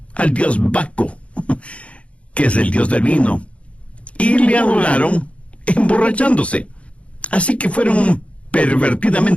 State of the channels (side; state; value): right; late; 0.062 ms